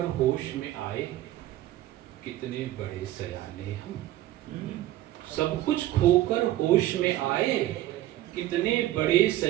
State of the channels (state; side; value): quieter; left; 14.6 dB